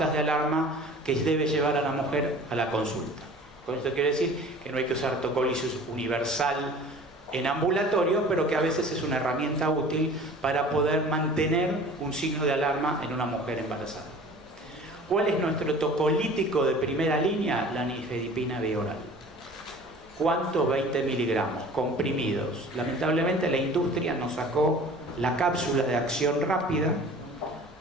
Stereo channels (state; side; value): normal; both; correlation 0.44